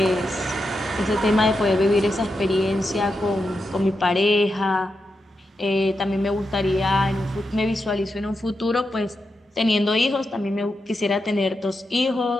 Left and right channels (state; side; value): normal; both; correlation 0.87